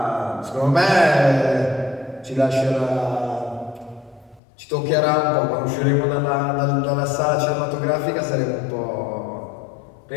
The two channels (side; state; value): right; drops out; at 4.4 s